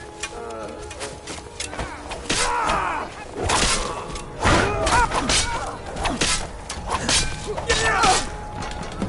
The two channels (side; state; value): both; identical; correlation 1.00